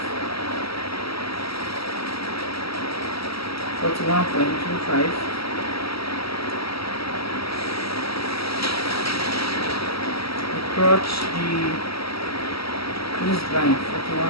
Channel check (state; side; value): late; right; 0.75 ms